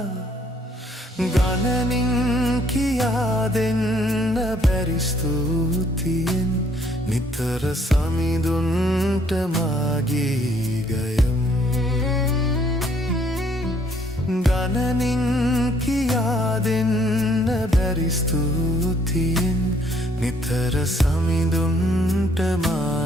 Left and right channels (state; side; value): normal; both; correlation 0.65